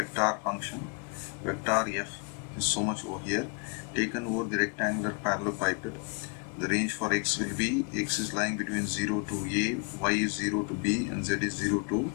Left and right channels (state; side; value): quieter; right; 33.8 dB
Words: function. Vector f is so much over here, taken over the rectangular parallelepiped. The range for x will be, x is lying between 0 to a, y is 0 to b, and z is 0 to